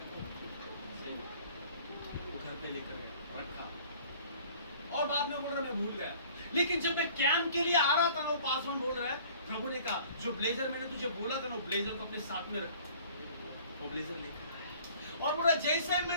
वो घर पे लेकर रखा, और बाद में बोल रहा मैं भूल गया। लेकिन जब मैं कैंप के लिए आ रहा था, वो पासवान बोल रहा है प्रभु ने कहा जो ब्लेजर मैंने तुझे बोला था ना, वो ब्लेजर को अपने साथ में रख। वो ब्लेजर लेकर और बोला जैसे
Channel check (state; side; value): inverted; both; correlation -0.51